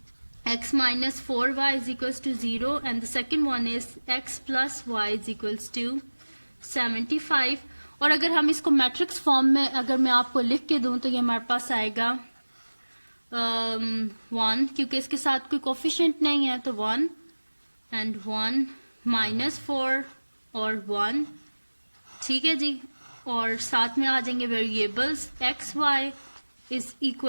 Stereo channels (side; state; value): both; inverted; correlation -1.00